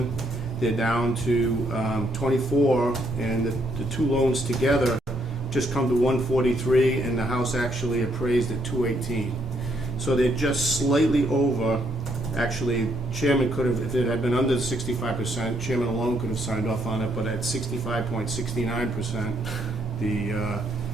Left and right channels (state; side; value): normal; both; correlation 0.72